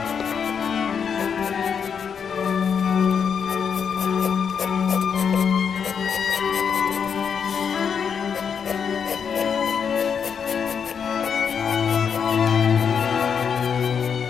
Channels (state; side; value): quieter; right; 6.9 dB